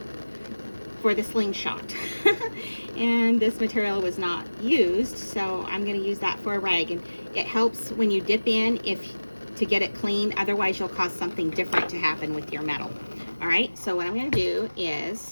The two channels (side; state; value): both; inverted; correlation -1.00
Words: for the slingshot. And this material was not used, so I'm going to use that for a rag. And it helps when you dip in to get it clean. Otherwise, you'll cause something different to happen with your metal. All right, so what I'm going to do